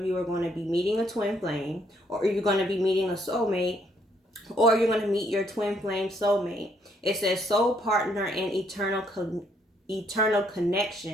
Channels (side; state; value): both; normal; correlation 0.70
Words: you are going to be meeting a twin flame, or you're going to be meeting a soulmate, or you're going to meet your twin flame soulmate. It says soul partner and eternal